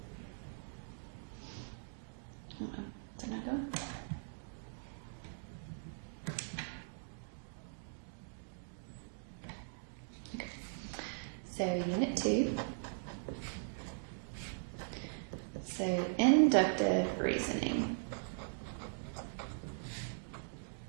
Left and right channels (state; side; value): silent; left; digital silence